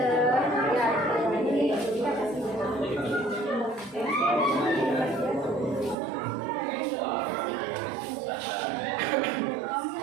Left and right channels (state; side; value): drops out; left; at 6.0 s